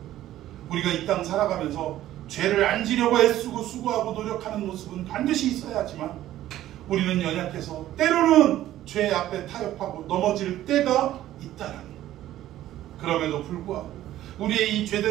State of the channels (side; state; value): left; quieter; 13.6 dB